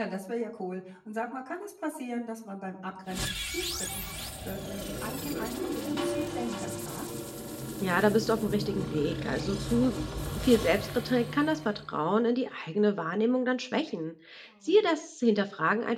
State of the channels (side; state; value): both; identical; correlation 1.00